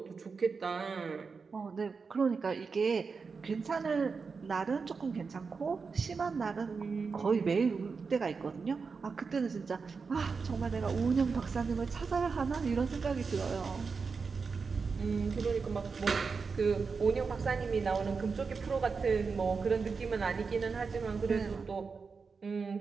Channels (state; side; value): quieter; left; 5.0 dB